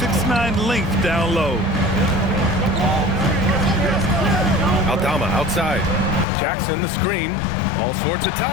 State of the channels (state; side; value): drops out; right; at 6.2 s